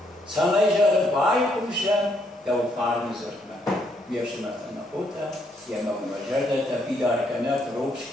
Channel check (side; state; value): both; normal; correlation 0.72